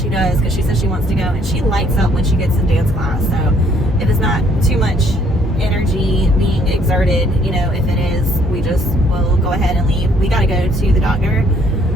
does, because she says she wants to go, and she lights up when she gets in dance class. So if it's not too much energy being exerted, if it is, we'll go ahead and leave. We got to go to the doctor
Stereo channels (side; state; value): both; normal; correlation 0.64